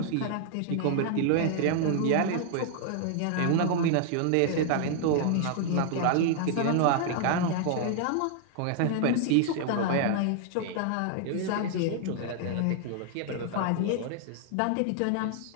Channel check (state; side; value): different; both; correlation 0.00